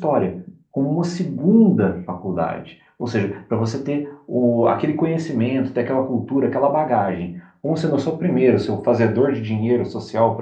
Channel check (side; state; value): both; identical; correlation 1.00